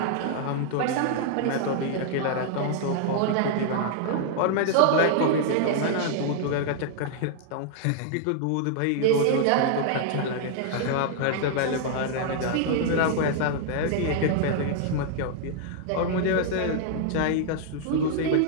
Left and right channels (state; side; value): different; both; correlation -0.01